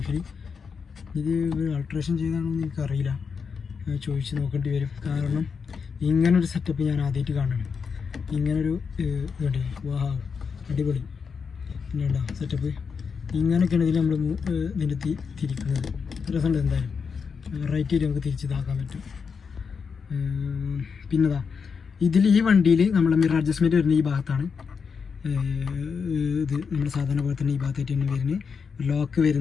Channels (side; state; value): right; quieter; 5.8 dB